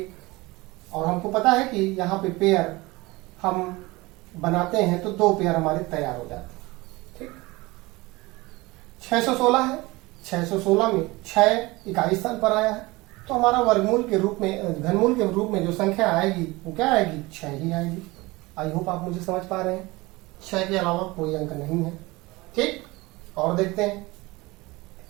और हमको पता है कि यहाँ पे पेयर हम बनाते हैं तो 2 पेयर हमारे तैयार हो जाते हैं। ठीक, 616 है, 616 में 6 इकाई स्थान पर आया है, तो हमारा वर्गमूल के रूप में, घनमूल के रूप में जो संख्या आएगी वो क्या आएगी? 6 ही आएगी। आई होप आप मुझे समझ पा रहे हैं। 6 के अलावा कोई अंक नहीं है। ठीक, और देखते हैं।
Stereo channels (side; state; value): left; quieter; 22.0 dB